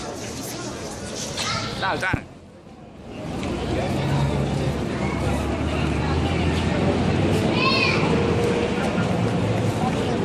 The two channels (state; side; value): identical; both; correlation 1.00